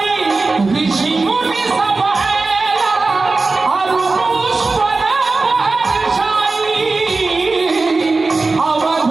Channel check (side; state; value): left; quieter; 3.7 dB